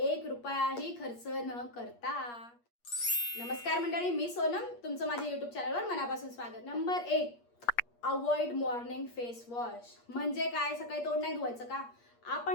रुपयाही खर्च न करता. नमस्कार मंडळी, मी सोनम, तुमचं माझ्या यूट्यूब चॅनलवर मनापासून स्वागत. Number 1, avoid morning face wash. म्हणजे काय, सकाळी तोंड नाही धुवायचं का?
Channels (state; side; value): late; right; 8.5 ms